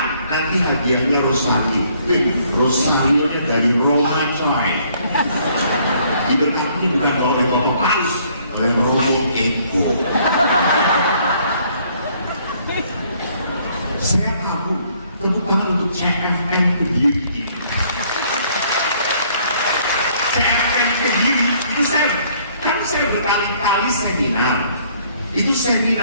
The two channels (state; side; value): inverted; both; correlation -0.63